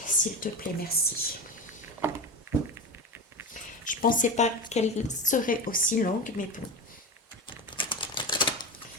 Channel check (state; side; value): normal; both; correlation 0.24